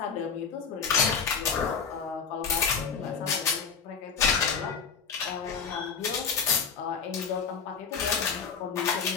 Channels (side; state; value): right; quieter; 6.2 dB